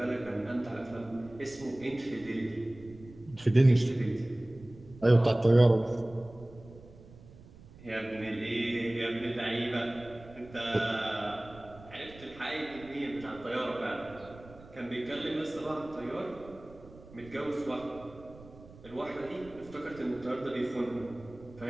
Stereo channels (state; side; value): noise; right; rumble, 20 dB below the sound